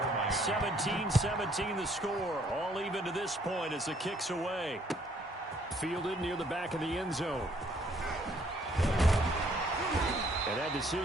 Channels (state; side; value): normal; both; correlation 0.65